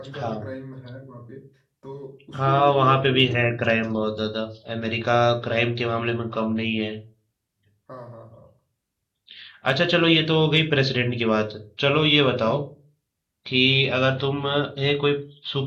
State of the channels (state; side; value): identical; both; correlation 1.00